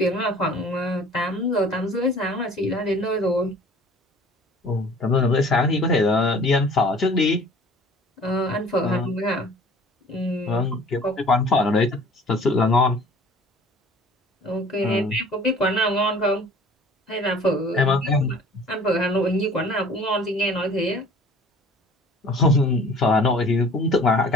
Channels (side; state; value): both; normal; correlation 0.49